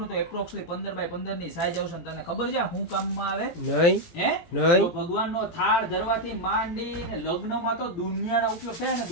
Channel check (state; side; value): late; right; 17 ms